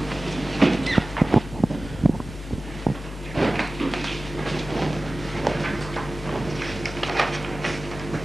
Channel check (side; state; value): both; normal; correlation 0.97